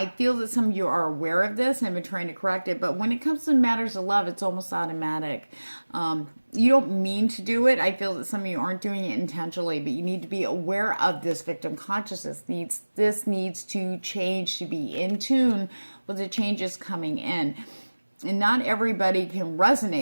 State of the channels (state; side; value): inverted; both; correlation -1.00